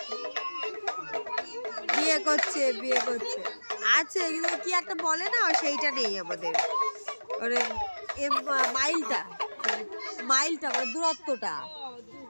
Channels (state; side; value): inverted; both; correlation -1.00